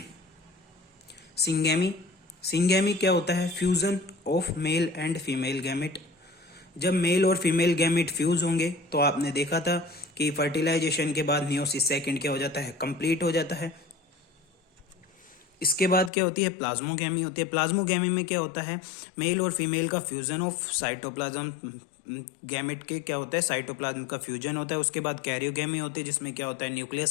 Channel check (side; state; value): right; drops out; at 16.1 s